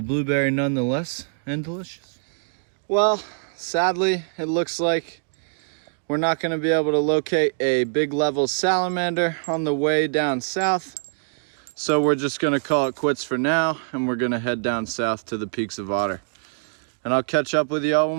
blueberry nonetheless, and delicious. Well, sadly, it looks like we're not going to be able to locate a Big Level salamander on the way down south. So we're just going to call it quits for now, and we're going to head down south to the Peaks of Otter. And I'll catch up with y'all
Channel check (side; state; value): left; silent; digital silence